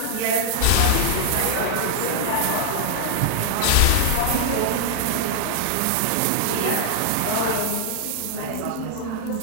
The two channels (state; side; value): different; both; correlation -0.01